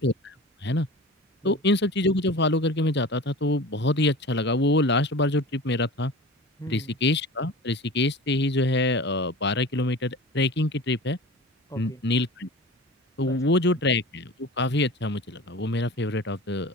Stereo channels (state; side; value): normal; both; correlation 0.35